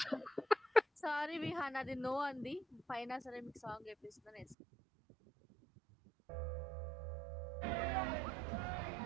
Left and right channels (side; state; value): left; drops out; at 4.5 s